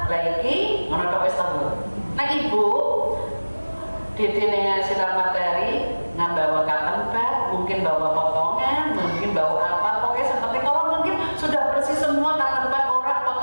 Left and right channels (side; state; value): both; inverted; correlation -1.00